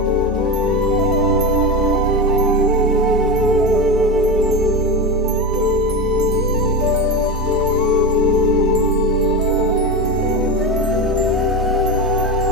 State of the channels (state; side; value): normal; both; correlation 0.19